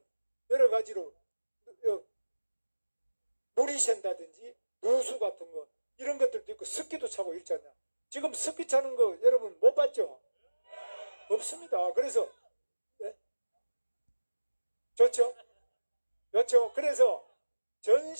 여러 가지로 물이 샌다든지 누수 같은 거 이런 것들도 있고 습기도 차고 있잖아요. 지금 습기 차는 거 여러분 못 봤죠? 없습니다. 그래서 좋죠? 그렇죠? 그래서 전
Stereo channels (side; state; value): both; inverted; correlation -1.00